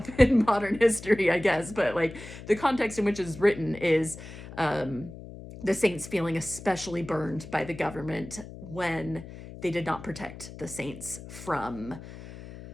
in modern history, I guess, but like the context in which it's written is the saints feeling especially burned by the government when they did not protect the saints from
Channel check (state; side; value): noise; left; hum, 14 dB below the sound